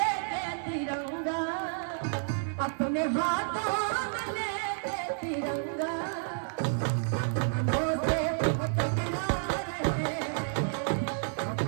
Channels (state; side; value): silent; left; 57 dB below the other